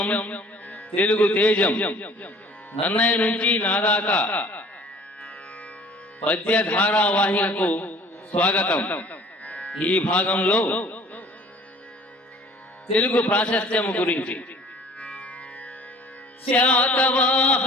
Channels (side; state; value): both; normal; correlation 0.50